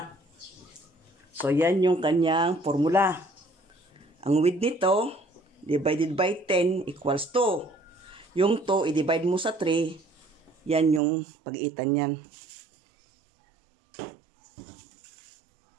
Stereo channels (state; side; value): drops out; left; at 11.0 s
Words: So, yan yung kanyang formula. Ang width nito, divided by 10 equals 2. Yung 2, i-divide mo sa 3. Yan yung pagitan yan.